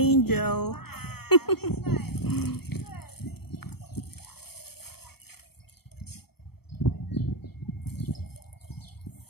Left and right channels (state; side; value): late; right; 0.96 ms